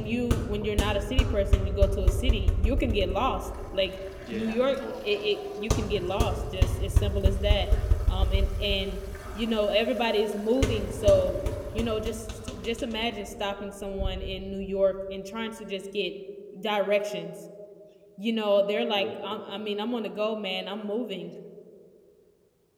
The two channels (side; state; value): both; identical; correlation 1.00